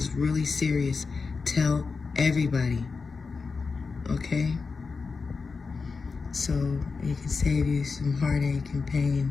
really serious. Tell everybody. Okay? So it can save you some heartache and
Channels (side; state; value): right; quieter; 4.7 dB